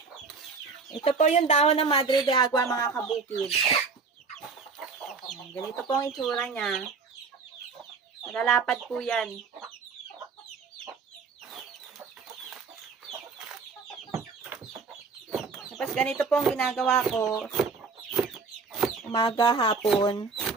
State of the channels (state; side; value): quieter; left; 4.8 dB